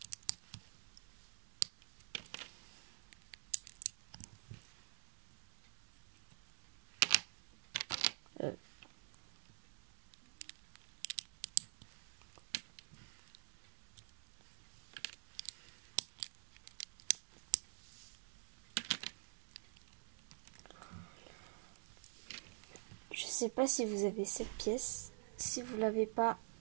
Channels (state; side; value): silent; left; digital silence